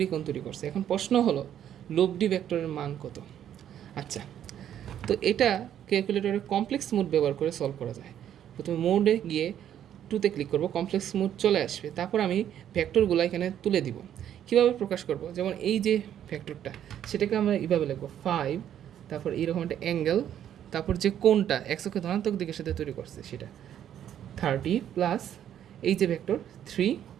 কোণ তৈরি করছে। এখন প্রশ্ন হলো লব্ধি ভেক্টরের মান কত? আচ্ছা, তো এটা ক্যালকুলেটরে কমপ্লেক্স মোড ব্যবহার করে সলভ করা যায়। প্রথমে মোডে গিয়ে 2তে ক্লিক করব, কমপ্লেক্স মোড চলে আসবে। তারপর আমি ভেক্টরগুলো এখানে তুলে দিব। কীভাবে প্রকাশ করব? যেমন এই যে ভেক্টরটা, সেটাকে আমরা এইভাবে লিখব 5, তারপর এইরকম একটা অ্যাঙ্গেল, তারপর যে কোণটা এক্স অক্ষের ধনাত্মক দিকের সাথে তৈরি করছে সেটা 30 প্লাস এই যে ভেক্টর 3,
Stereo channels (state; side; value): quieter; left; 10.3 dB